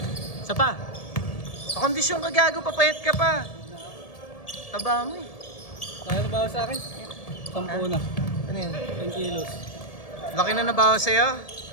Isa pa. Sa kondisyon ka gago, papayat ka pa. Taba mo eh. Kaya na ba sa akin? 10 na. Ano yun? 10 kilos. Laki na nabawas sa'yo?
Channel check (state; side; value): late; right; 1.7 ms